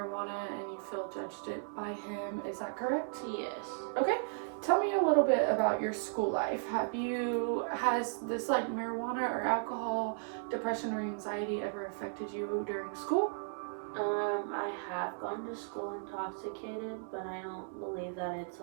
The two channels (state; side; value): silent; left; 54 dB below the other